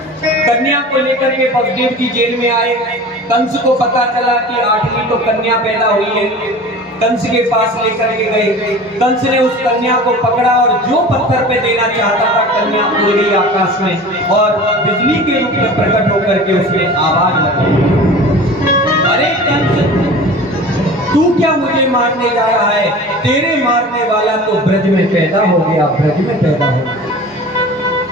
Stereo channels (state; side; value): normal; both; correlation 0.38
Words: कन्या को लेकर के वसुदेव जी जेल में आए। कंस को पता चला कि 8वीं तो कन्या पैदा हुई है, कंस के पास लेकर के गए। कंस ने उस कन्या को पकड़ा और जो पत्थर पे देना चाहता था कन्या उड़ गई आकाश में और बिजली के रूप में प्रकट होकर के उसने आवाज लगाई, अरे कंस तू क्या मुझे मारने जा रहा है? तेरे मारने वाला तो ब्रज में पैदा हो गया, ब्रज में पैदा हो गया।